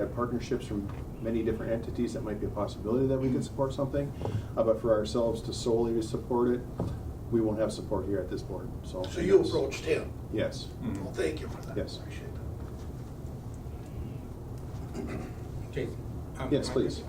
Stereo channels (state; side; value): identical; both; correlation 1.00